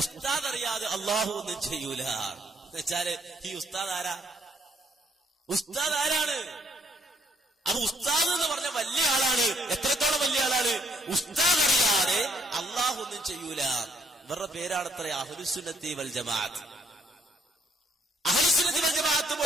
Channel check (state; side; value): normal; both; correlation 0.68